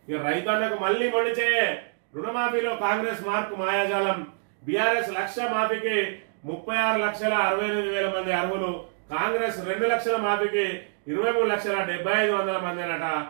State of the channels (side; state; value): left; silent; digital silence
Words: ఇక రైతన్నకు మళ్ళీ మండిచే రుణమాఫీలో కాంగ్రెస్ మార్కు మాయాజాలం. బీఆర్ఎస్ లక్ష మాఫీకి 36,68,000 మంది అర్హులు. కాంగ్రెస్ 2 లక్షల మాఫీకి 23,75,000 మంది అనట.